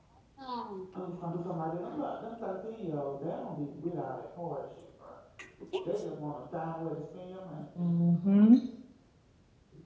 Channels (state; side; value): identical; both; correlation 1.00